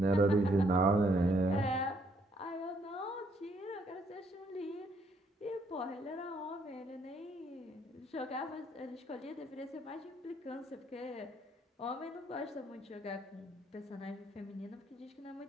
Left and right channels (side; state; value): both; normal; correlation 0.69